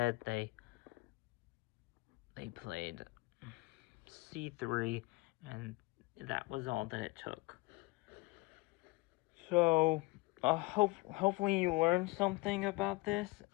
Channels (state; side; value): quieter; right; 23.6 dB